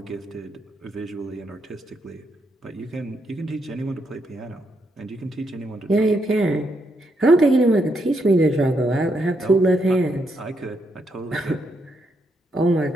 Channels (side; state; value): both; normal; correlation 0.78